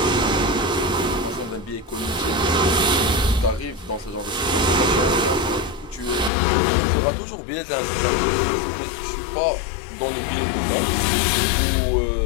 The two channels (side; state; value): right; drops out; at 6.3 s